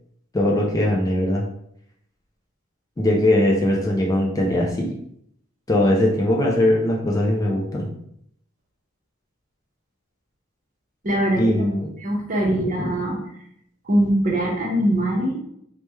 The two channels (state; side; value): normal; both; correlation 0.74